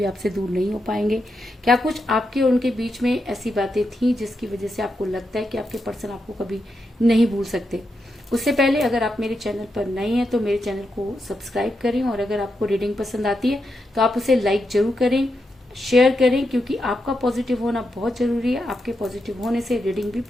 आपसे दूर नहीं हो पाएंगे। क्या कुछ आपके और उनके बीच में ऐसी बातें थी जिसकी वजह से आपको लगता है कि आपके पर्सन आपको कभी नहीं भूल सकते? उससे पहले अगर आप मेरे चैनल पर नए हैं तो मेरे चैनल को सब्सक्राइब करें, और अगर आपको रीडिंग पसंद आती है तो आप उसे लाइक जरूर करें, शेयर करें, क्योंकि आपका पॉजिटिव होना बहुत जरूरी है। आपके पॉजिटिव होने से रीडिंग भी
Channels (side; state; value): both; normal; correlation 0.85